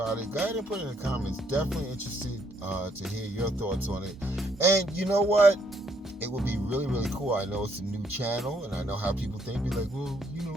it, go ahead and put it in the comments. Definitely interested to hear your thoughts on it. And you know what? It would be really, really cool. I know it's a new channel, and I know how people think. Be like, well, you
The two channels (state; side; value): normal; both; correlation 0.70